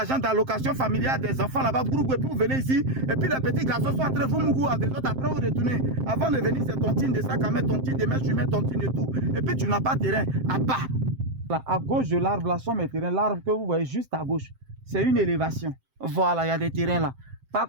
d'allocation familiale des enfants là-bas, et puis vous venez ici, et puis les petits garçons sont en train de vous mourir à des autres, après vous retournez. Avant de venir, c'est tontine de sac à mettre tontine, demain tu mets tontine et tout. Et puis tu n'as pas de terrain. À bas. Là, à gauche de l'arbre, là sont mes terrains. L'arbre que vous voyez juste à gauche, c'est une élévation. Voilà, il y a des terrains là.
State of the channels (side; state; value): left; late; 7.6 ms